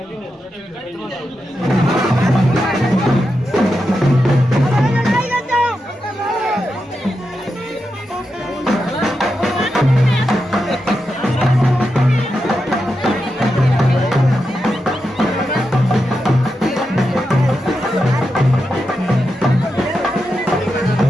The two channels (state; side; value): normal; both; correlation 0.88